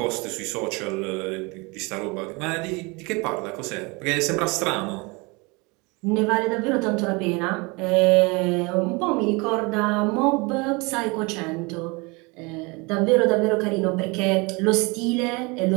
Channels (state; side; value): quieter; left; 27.4 dB